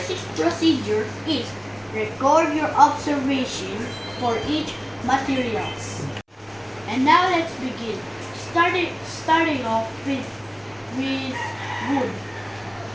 procedure is record your observation for each materials. And now let's begin. Starting off with wood.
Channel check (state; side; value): identical; both; correlation 1.00